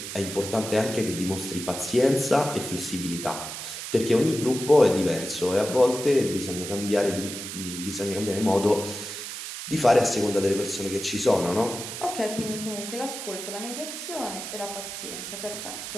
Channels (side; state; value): right; noise; hiss, 8 dB below the sound